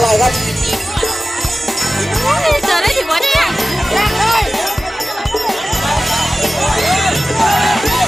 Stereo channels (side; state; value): both; normal; correlation 0.95